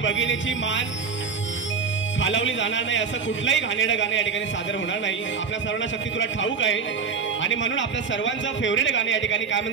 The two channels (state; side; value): quieter; left; 5.7 dB